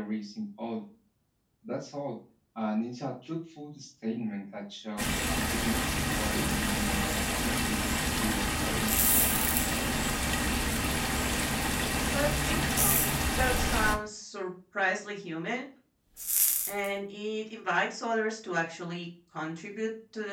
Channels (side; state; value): both; identical; correlation 1.00